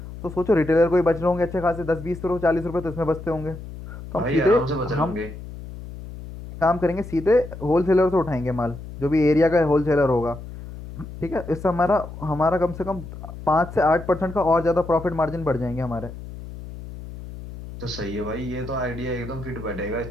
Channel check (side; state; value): left; noise; hum, 12 dB below the sound